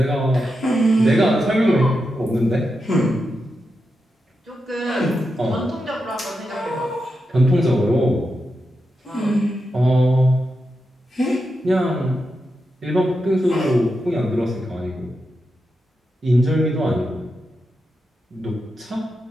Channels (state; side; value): normal; both; correlation 0.87